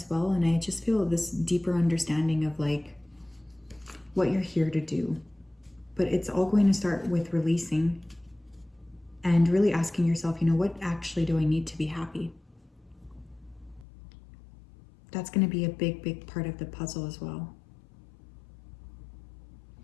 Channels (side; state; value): right; drops out; at 13.9 s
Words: well. And I just feel this deeper understanding of like what you're here to do. But it's all going to start with releasing and really asking yourself, you know, what actually do I need to be happy? That's going to be a big, big part of the puzzle as well.